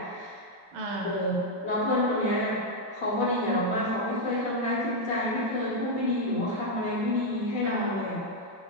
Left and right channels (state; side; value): late; left; 5.2 ms